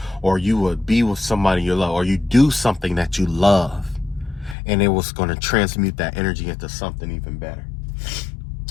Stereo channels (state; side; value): drops out; right; at 4.5 s